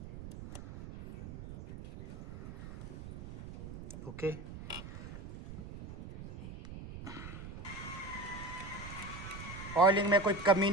ओके। ऑयलिंग में कोई कमी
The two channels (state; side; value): noise; right; rumble, 12 dB below the sound